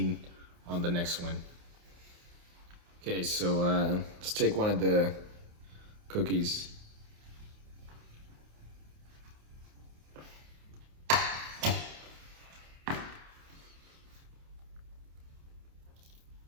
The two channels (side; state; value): left; late; 28 ms